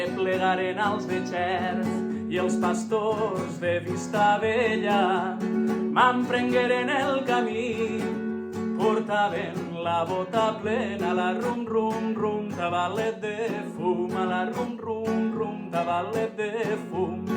als de Xert i els pastors de Vistabella m'emprengueren el camí, portaven la bota plena, la rum rum rum, tabalet de fum, a la rum rum rum, tabalet de fum.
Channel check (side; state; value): both; identical; correlation 1.00